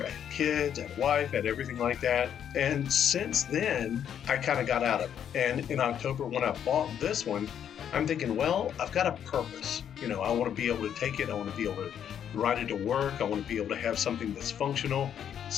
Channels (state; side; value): quieter; right; 9.1 dB